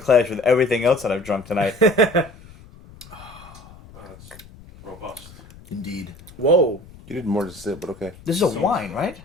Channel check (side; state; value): left; noise; rumble, 21 dB below the sound